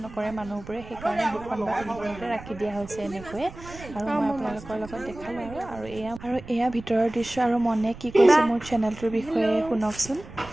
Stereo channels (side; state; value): right; noise; rumble, 16 dB below the sound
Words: নকৰে মানুহবোৰে সেইকাৰণে 2খন বা 3খনতে ৰাখি দিয়া হৈছে এনেকৈয়ে আৰু মই আপোনালোকৰ লগত দেখালোঁ আৰু এয়া ভিতৰৰ দৃশ্য আৰু মনে কি কৈছে মোৰ চেনেলটোৰ বিষয়ে শুনকচোন